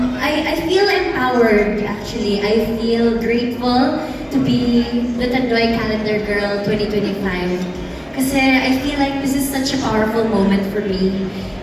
feel empowered, actually. I feel grateful to be the Tanduay Calendar Girl 2025. Kasi I feel like this is such a powerful moment for me.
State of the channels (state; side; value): identical; both; correlation 1.00